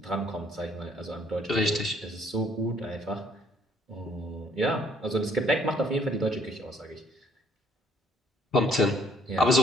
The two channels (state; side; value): normal; both; correlation 0.63